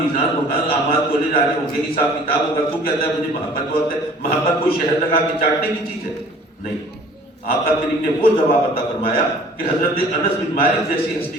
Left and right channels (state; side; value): normal; both; correlation 0.51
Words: ہوگا، اعمال تولے جا رہے ہوں گے، حساب کتاب ہوگا، تو کہتا ہے مجھے محبت بہت ہے. محبت کوئی شہد لگا کے چاٹنے کی چیز ہے؟ نہیں. آقا کریم نے وہ جواب عطا فرمایا کہ حضرت انس بن مالک جیسی